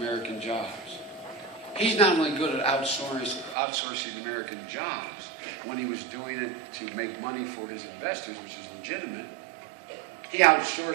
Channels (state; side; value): drops out; left; at 3.6 s